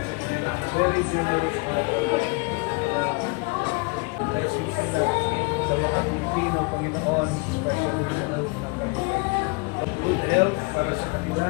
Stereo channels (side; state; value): right; quieter; 29.1 dB